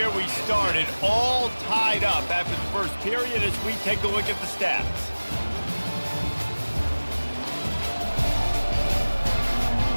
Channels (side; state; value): both; inverted; correlation -1.00